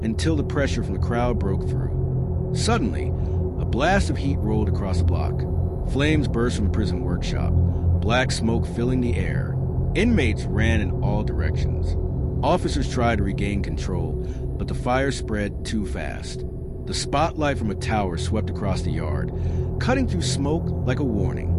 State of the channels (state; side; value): identical; both; correlation 1.00